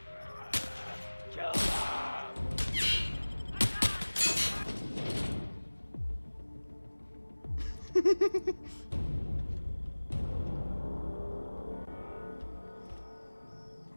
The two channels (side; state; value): both; inverted; correlation -1.00